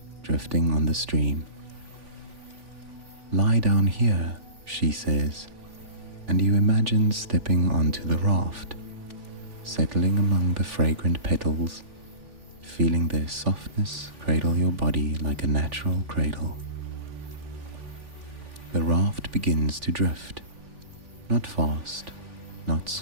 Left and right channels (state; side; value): late; left; 3.4 ms